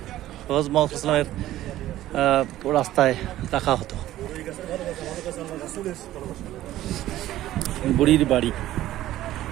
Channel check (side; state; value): left; quieter; 14.3 dB